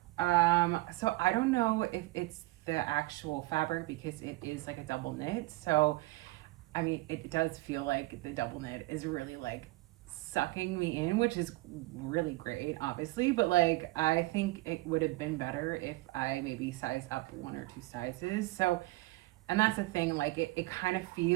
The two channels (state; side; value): quieter; left; 20.4 dB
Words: So I don't know if it's the actual fabric because it is like a double knit. So I mean, it does feel like the double knit is really like sucking me in, which is really great, obviously. But like, I think it would have been better if I maybe size up 1 or 2 sizes. So, and that's the thing, like, it kind of